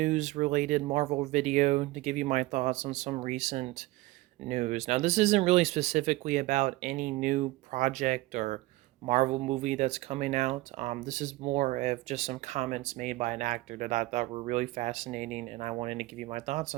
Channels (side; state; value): left; quieter; 19.3 dB